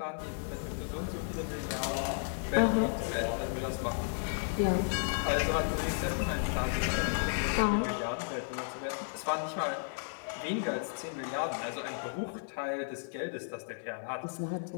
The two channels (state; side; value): silent; right; 55 dB below the other